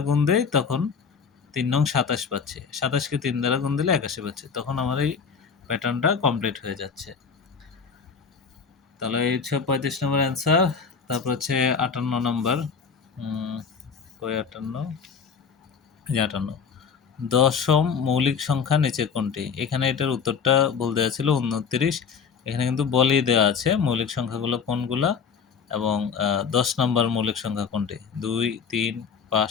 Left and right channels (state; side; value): quieter; right; 6.2 dB